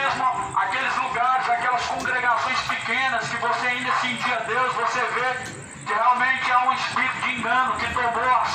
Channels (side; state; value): both; identical; correlation 1.00